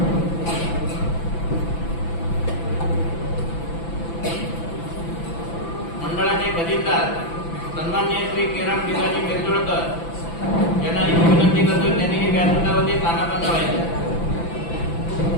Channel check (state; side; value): late; right; 6.0 ms